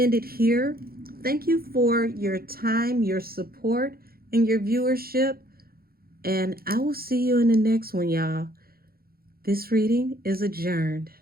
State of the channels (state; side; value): late; left; 0.44 ms